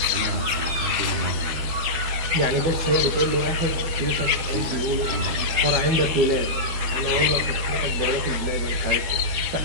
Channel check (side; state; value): left; late; 12 ms